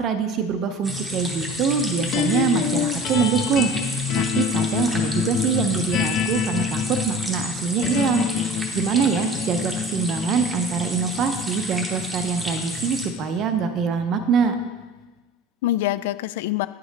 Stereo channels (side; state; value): both; normal; correlation 0.42